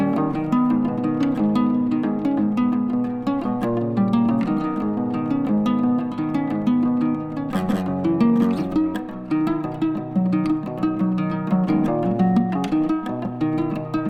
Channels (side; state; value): both; identical; correlation 1.00